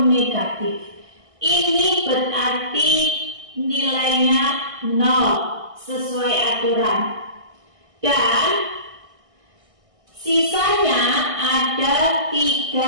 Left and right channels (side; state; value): left; late; 1.6 ms